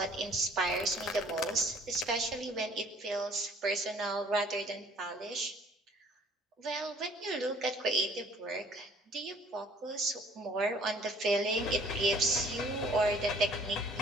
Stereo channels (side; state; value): both; normal; correlation 0.56